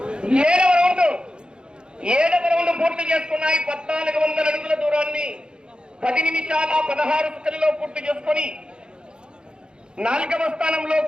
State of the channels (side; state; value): left; late; 0.050 ms